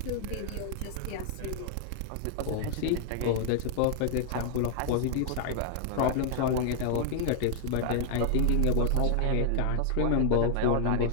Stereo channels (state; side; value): different; both; correlation 0.00